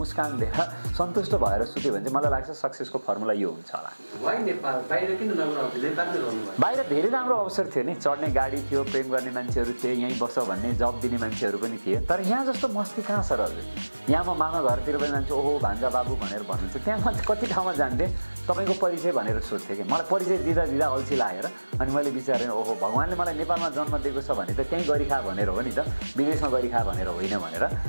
दिएर सन्तुष्ट भएर सुत्यो भने चाहिँ मलाई लाग्छ सक्सेसको फर्मुला यो हुन्छ होला। वाइ नेपाल? बाहिर किन नगर्नु? नेपालमै रहनुभयो? बाहिर धेरै राम्रो अवसर थियो नि, चढ्ने गाडी थियो, प्रेम गर्ने मान्छेहरू थिए, यहीँ बस भन्ने जब दिने मान्छेहरू पनि थिए। तर यहाँ जस्तो मस्ती कहाँ छ र हजुर? यहाँ म मामा घरतिर पनि जान्छु, ओहो भान्जा बाबु भनेर भन्नुहुन्छ। त्यहाँ म कति ठाउँमा जान्थेँ, तपाईँको परिचय भनेर सोध्थेँ कि मलाई परिचय दिँदा दिँदा अल्छी लागेर अनि मैले विचारेँ ओहो भगवान्ले मलाई नेपालमा जन्म दिएको छ भने त त्यहीँ गरिखा भनेर हो नि त, विदेशमा गरिखा भनेर होइन भनेर।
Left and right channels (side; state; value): both; inverted; correlation -1.00